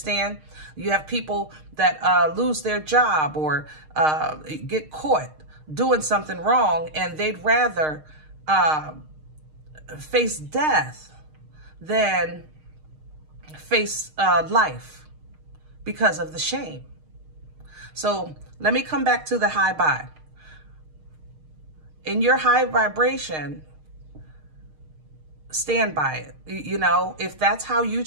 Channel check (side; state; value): left; late; 6.5 ms